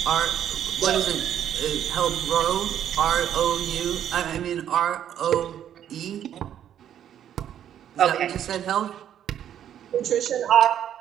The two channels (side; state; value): left; quieter; 10.1 dB